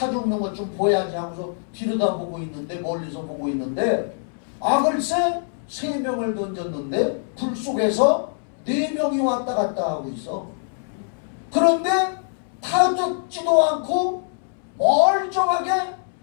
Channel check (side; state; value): right; silent; 62 dB below the other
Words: 죽는 것 좀 보여야지 하면서 뒤로다보고 있는데, 멀리서 보고 있는데, 글쎄 3명을 던졌는데 불 속에서 4명이 왔다 갔다 하고 있어. 그런데 타 죽지도 않고 멀쩡하게